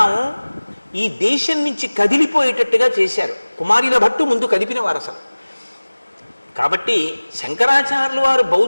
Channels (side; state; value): both; inverted; correlation -1.00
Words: ఈ దేశం నుంచి కదిలిపోయేటట్టుగా చేశారు. కుమారిల భట్టు ముందు కదిపిన వారు అసలు. కాబట్టి శంకరాచార్యులు వారు